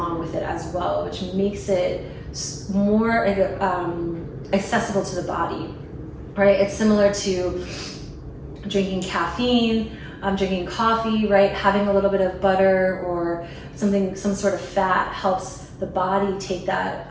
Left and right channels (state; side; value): identical; both; correlation 1.00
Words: with it as well, which makes it more accessible to the body, right? It's similar to drinking caffeine, drinking coffee, right? Having a little bit of butter or some sort of fat helps the body take that